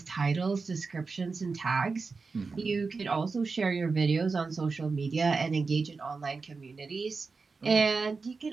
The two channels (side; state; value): left; quieter; 4.4 dB